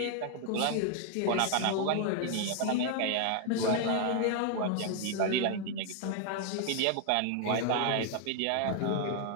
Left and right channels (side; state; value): both; different; correlation 0.00